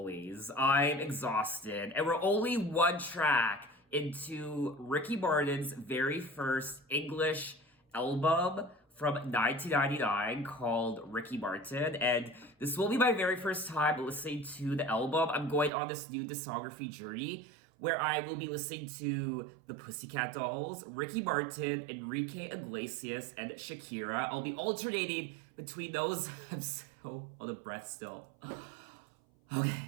I'm exhausted, and we're only one track into Ricky Martin's very first English album from 1999 called Ricky Martin, and this will be my very first time listening to the album. I'm going on this new discography journey where I will be listening to the Pussycat Dolls, Ricky Martin, Enrique Iglesias, and Shakira. I'll be alternating between those. I'm so on the breath still.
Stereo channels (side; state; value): left; drops out; at 15.7 s